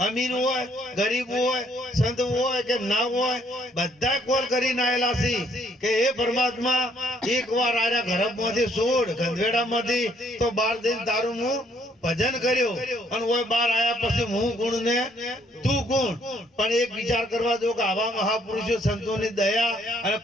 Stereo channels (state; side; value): normal; both; correlation 0.66